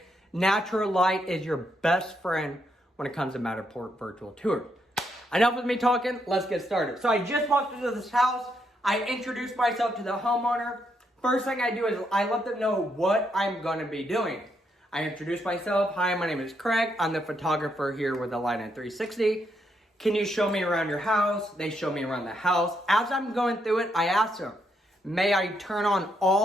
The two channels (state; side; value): normal; both; correlation 0.78